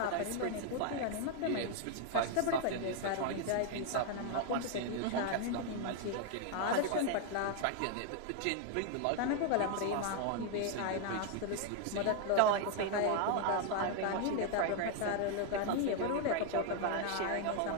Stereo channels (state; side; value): different; both; correlation 0.00